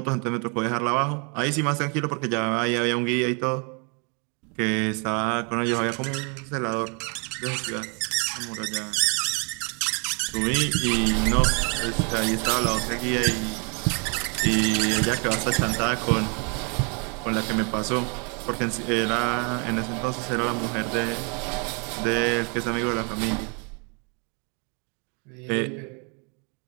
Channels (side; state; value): left; quieter; 35.5 dB